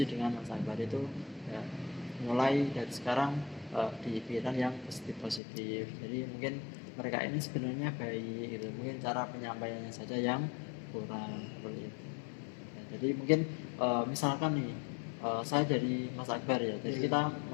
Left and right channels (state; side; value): drops out; right; at 5.4 s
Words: dengan Mas Akbar. Itu ya, mulai dari sekarang dipikiran yang positif. Jadi mungkin mereka ini sebenarnya baik gitu, mungkin cara penyampaiannya saja yang kurang, seperti itu. Ya, jadi mungkin misalkan nih saya jadi Mas Akbar ya, jadi kita